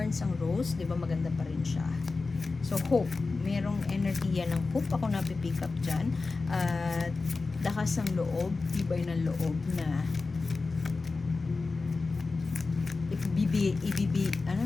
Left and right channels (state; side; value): quieter; right; 3.9 dB